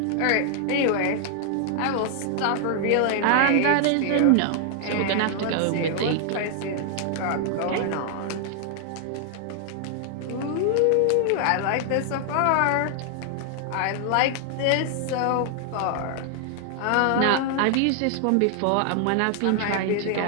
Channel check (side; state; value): both; different; correlation 0.00